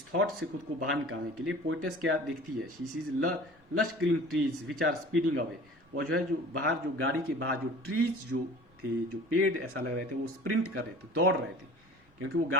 थॉट से खुद को बाहर निकालने के लिए पोइटेस क्या देखती है? She sees lush green trees which are speeding away. वो जो है जो बाहर, जो गाड़ी के बाहर जो ट्रीज जो थे, जो पेड़ ऐसा लग रहे थे वो स्प्रिंट कर रहे थे, दौड़ रहे थे, क्योंकि वो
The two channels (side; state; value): both; normal; correlation 0.43